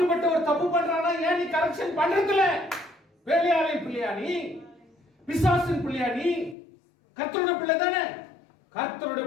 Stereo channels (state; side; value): drops out; right; at 6.6 s